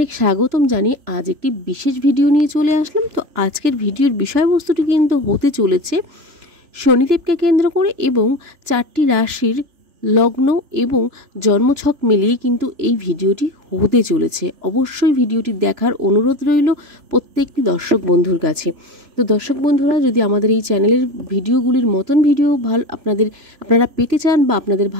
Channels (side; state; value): left; late; 3.4 ms